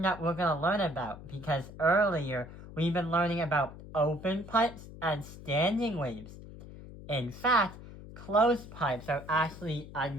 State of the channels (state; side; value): noise; left; hum, 15 dB below the sound